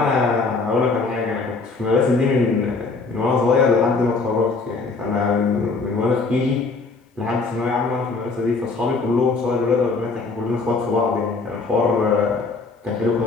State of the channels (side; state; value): right; quieter; 4.0 dB